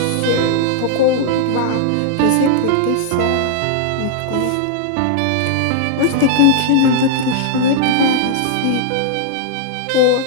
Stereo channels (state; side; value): different; both; correlation -0.01